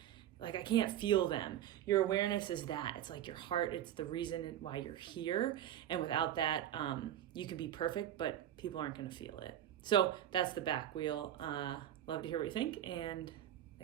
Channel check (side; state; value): left; quieter; 11.4 dB